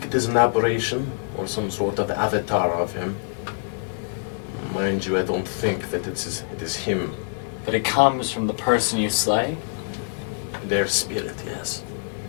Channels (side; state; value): right; silent; 62 dB below the other